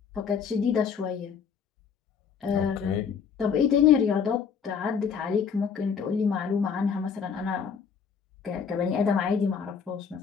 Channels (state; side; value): quieter; right; 6.6 dB